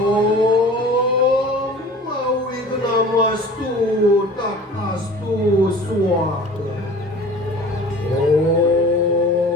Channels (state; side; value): normal; both; correlation 0.43